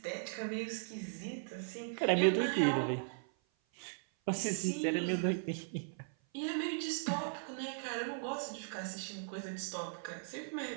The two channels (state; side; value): silent; left; 53 dB below the other